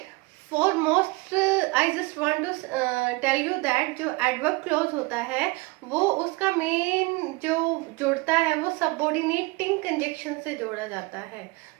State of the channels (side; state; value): left; quieter; 25.0 dB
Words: For most I just want to tell you that जो adverb clause होता है वो उसका main जो जुड़ता है वो subordinating conjunction से जोड़ा जाता है.